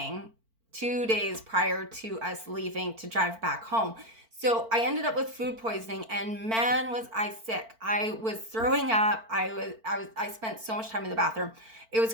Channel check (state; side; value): late; left; 4.5 ms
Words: 2 days prior to us leaving to drive back home. So I ended up with food poisoning, and man, was I sick. I was throwing up. I spent so much time in the bathroom. It was